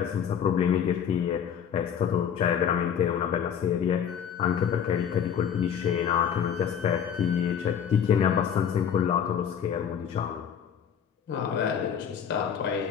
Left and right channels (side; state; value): right; quieter; 8.2 dB